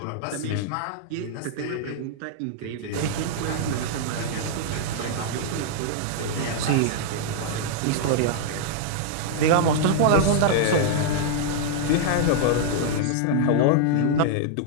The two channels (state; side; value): different; both; correlation -0.01